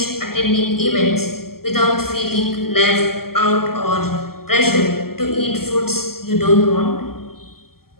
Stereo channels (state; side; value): late; right; 0.93 ms